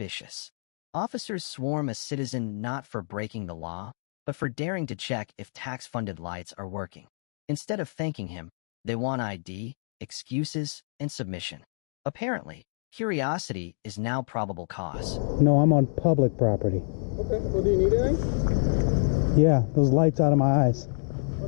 Officers swarm a citizen not for breaking the law, but for daring to check if tax-funded lights are working. Instead of thanking him, they want ID, excuses, and submission. Apparently, curiosity is now probable cause. No, I'm on public property. Okay, well, do you need anything? Yeah, those lights out of my eyes.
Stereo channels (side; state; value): right; silent; digital silence